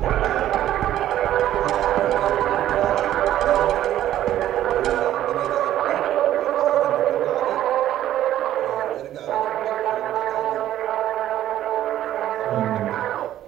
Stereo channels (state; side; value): quieter; left; 12.5 dB